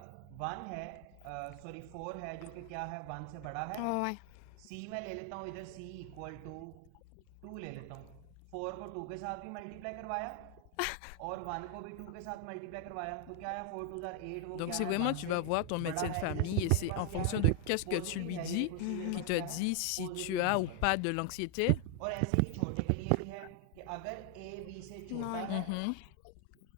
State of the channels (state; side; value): different; both; correlation 0.00